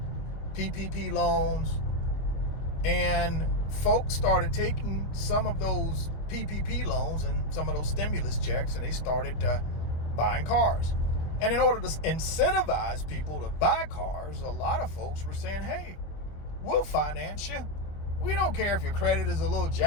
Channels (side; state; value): right; late; 25 ms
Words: PPP loans, and folks started taking some of those PPP loans and some of those stimulus checks, and they started buying cars. And in order to incentivize people to buy cars, a lot of folks were saying, hey, we'll finance you. We don't care if your credit is a little